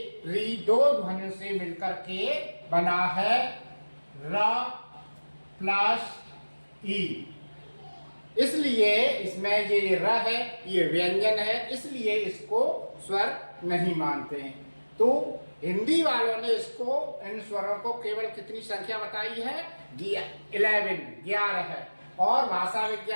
री 2 ध्वनियों से मिलकर के बना है, र प्लस ई। इसलिए इसमें ये र है, ये व्यंजन है, इसलिए इसको स्वर नहीं मानते हैं। तो हिंदी वालों ने इसको इन स्वरों को केवल कितनी संख्या बताई है? 11 है, और भाषा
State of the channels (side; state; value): both; inverted; correlation -1.00